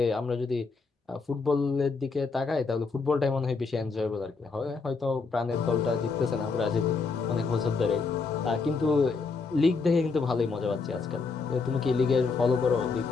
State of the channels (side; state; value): right; quieter; 4.5 dB